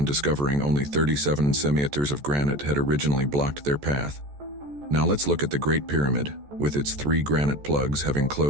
discovering only 37 centimeters of granite had originally blocked their path. Now let's look at the Great Pyramid, with its 3 granite plugs having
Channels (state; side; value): late; left; 14 ms